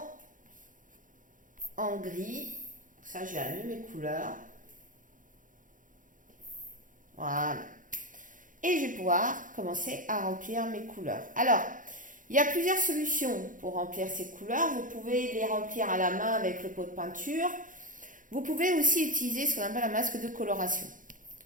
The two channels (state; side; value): late; left; 0.38 ms